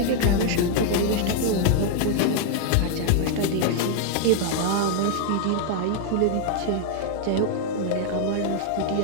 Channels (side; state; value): both; different; correlation 0.00